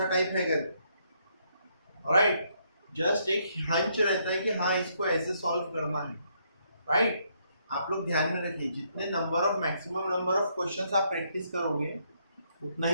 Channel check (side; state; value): both; inverted; correlation -0.73